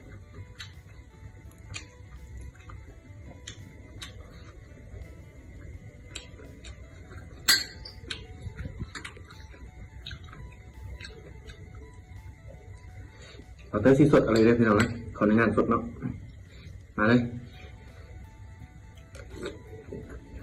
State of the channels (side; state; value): both; identical; correlation 1.00